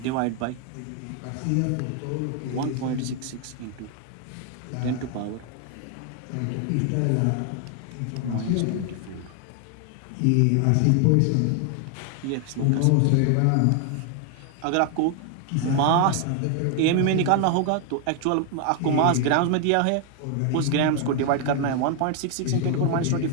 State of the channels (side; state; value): both; different; correlation 0.00